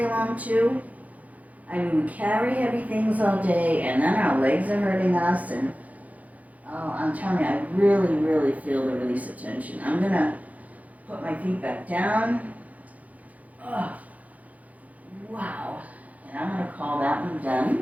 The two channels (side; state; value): left; late; 0.073 ms